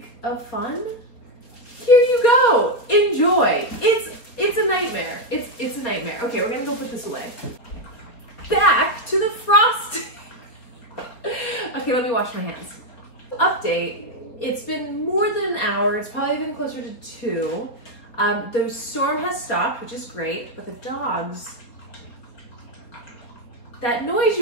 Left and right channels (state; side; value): late; right; 4.4 ms